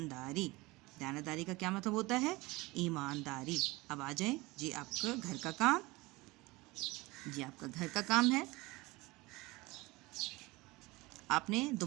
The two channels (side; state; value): left; quieter; 22.1 dB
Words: क्या मतलब होता है? ईमानदारी। अब आ जाएं जी आपका घर का काम। जी आपका घर का काम है, आपने